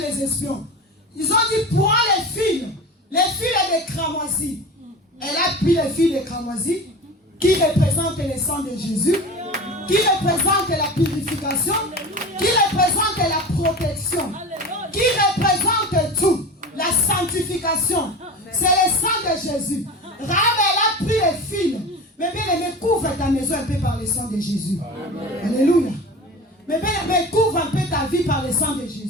espions. Ils ont dit, prends les fils des cramoisis. Elle a pris les fils des cramoisis qui représentent le sang de Jésus, qui représentent la purification, qui représentent la protection, qui représentent tout, la sanctification. C'est le sang de Jésus. Rahab, elle a pris les fils. Mais bien aimé, couvre ta maison un peu par le sang de Jésus. Alléluia. Mais bien aimé, couvre un peu ta vie par le sang de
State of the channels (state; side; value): normal; both; correlation 0.32